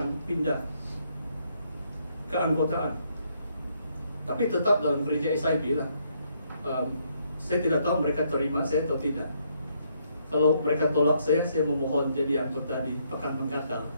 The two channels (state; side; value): inverted; both; correlation -0.73